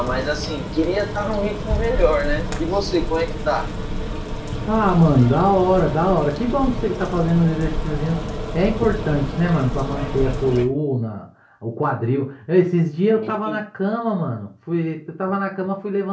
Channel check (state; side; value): identical; both; correlation 1.00